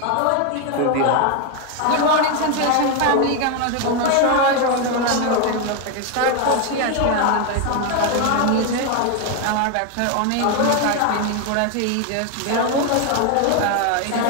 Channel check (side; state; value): both; different; correlation 0.01